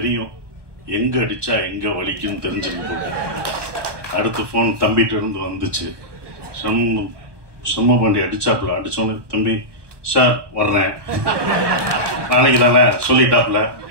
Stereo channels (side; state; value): left; late; 1.2 ms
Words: எங்க அடிச்சா எங்க வலிக்குன்னு தெரிஞ்சுக்கிட்டு. அடுத்த போன் தம்பிகிட்ட இருந்து வந்துச்சு. சும்மா பண்ணி அடிச்சாப்புல. அடிச்சோன்னு, தம்பி சார் வர்றேன், நாளைக்கு தானே சொல்லிட்டாப்புல,